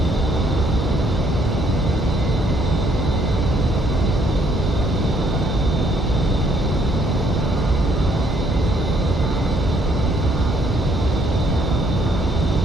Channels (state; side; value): normal; both; correlation 0.67